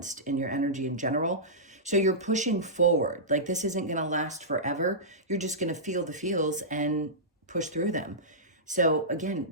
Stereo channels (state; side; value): normal; both; correlation -0.17